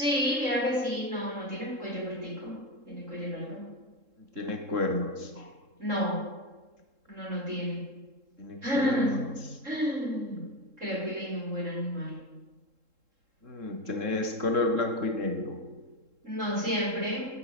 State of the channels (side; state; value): left; late; 3.7 ms